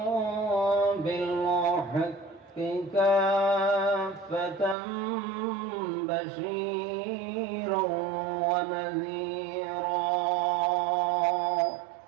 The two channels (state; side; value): drops out; left; at 4.8 s